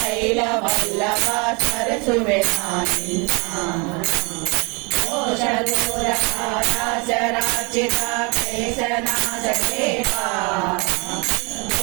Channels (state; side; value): quieter; left; 30.6 dB